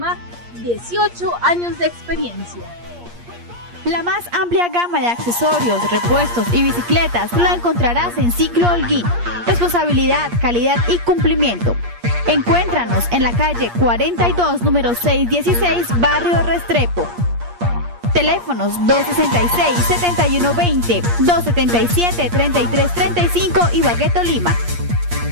18 años de experiencia. La más amplia gama de accesorios, repuestos y bicicletas la encontrarás en Ciclo Holguín. Responsabilidad, calidad y cumplimiento. Encuéntranos en la calle 42, número 616, barrio Restrepo. Teléfonos 266-7120, 277-3335, Ibagué, Tolima.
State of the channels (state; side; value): late; left; 8.5 ms